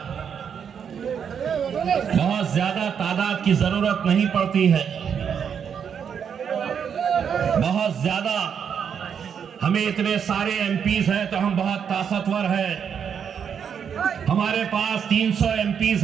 बहुत ज्यादा तादाद की जरूरत नहीं पड़ती है, बहुत ज्यादा हमें इतने सारे एमपीज हैं तो हम बहुत ताकतवर हैं, हमारे पास 300 एमपीज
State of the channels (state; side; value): quieter; left; 7.5 dB